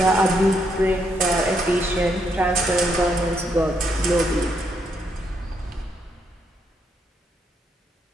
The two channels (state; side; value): normal; both; correlation 0.76